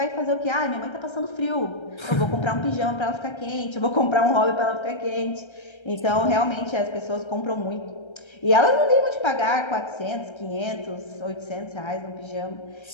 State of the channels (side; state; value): right; late; 1.3 ms